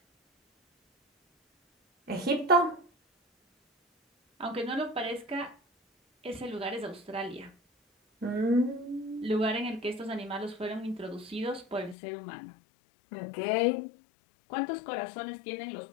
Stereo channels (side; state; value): right; drops out; at 12.0 s